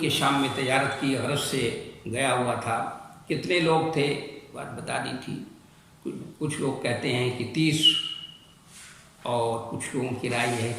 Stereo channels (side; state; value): both; identical; correlation 1.00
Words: شام میں تجارت کی غرض سے گیا ہوا تھا۔ کتنے لوگ تھے بات بتا دی تھی، کچھ لوگ کہتے ہیں کہ 30، اور کچھ لوگوں کی رائے یہ ہے